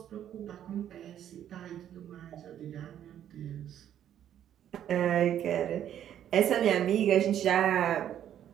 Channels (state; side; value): quieter; left; 10.5 dB